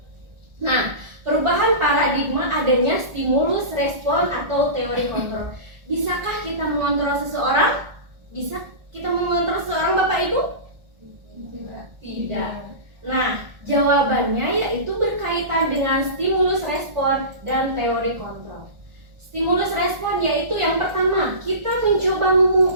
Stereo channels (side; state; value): left; late; 1.4 ms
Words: nah, perubahan paradigma adanya stimulus respon atau teori kontrol. Bisakah kita mengontrol seseorang? Bisa kita mengontrol seseorang, Bapak Ibu? Tidak. Nah, jawabannya yaitu berkaitan dengan stimulus respon dan teori kontrol. Stimulus respon yaitu yang pertama, kita mencoba